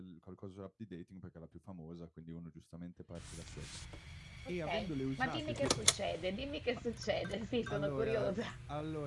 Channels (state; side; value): identical; both; correlation 1.00